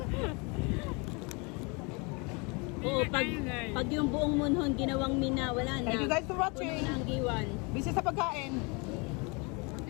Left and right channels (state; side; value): quieter; right; 30.5 dB